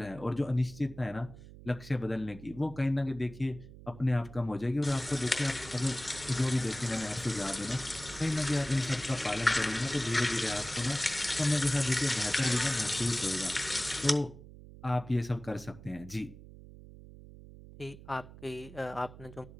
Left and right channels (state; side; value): noise; right; hum, 17 dB below the sound